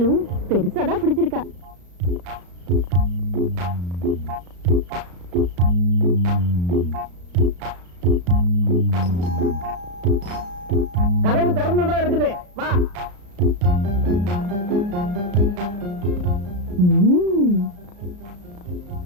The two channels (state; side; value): late; left; 34 ms